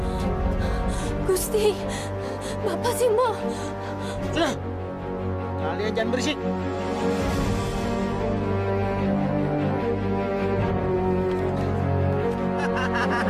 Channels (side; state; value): both; identical; correlation 1.00